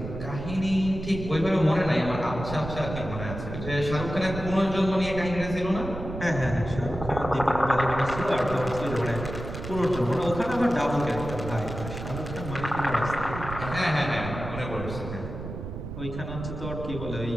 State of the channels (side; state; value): right; noise; rumble, 8 dB below the sound